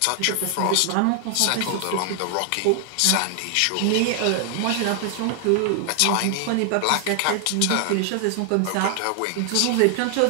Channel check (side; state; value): both; different; correlation 0.00